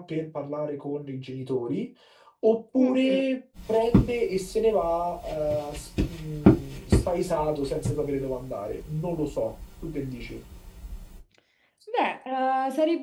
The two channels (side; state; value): both; identical; correlation 1.00